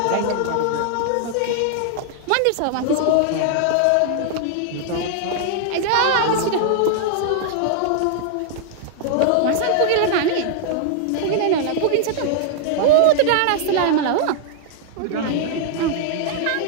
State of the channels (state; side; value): different; both; correlation 0.00